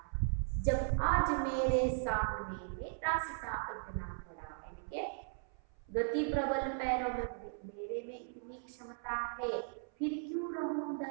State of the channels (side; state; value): left; silent; 53 dB below the other